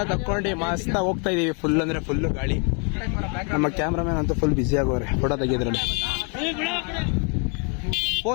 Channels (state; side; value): quieter; right; 37.6 dB